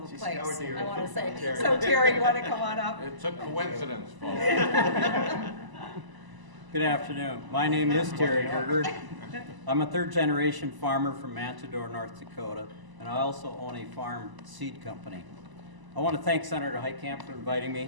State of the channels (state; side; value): late; left; 1.0 ms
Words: a place, I want to say. So Terry, you want to come on up? It's a coincidence, folks. Good afternoon. My name is Terry Gerger. I'm a third-generation farmer from Matador, North Dakota, and I also own a farm seed company. I want to thank Senator Heitkamp for inviting